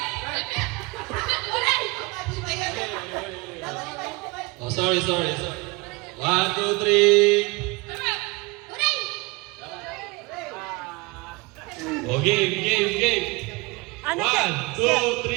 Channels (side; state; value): left; quieter; 24.8 dB